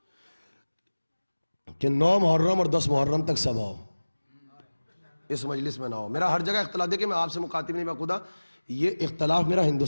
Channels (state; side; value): inverted; both; correlation -1.00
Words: کہ 9 محرم اور 10 محرم تک سب ہو, اس مجلس میں نہ ہو. میرا ہر جگہ اختلاف, دیکھیں میں آپ سے مخاطب نہیں, میں خدا یہ اختلاف میرا